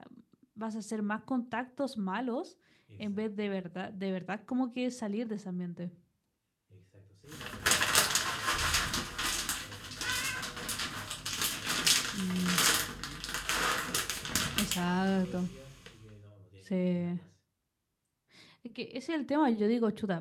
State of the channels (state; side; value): identical; both; correlation 1.00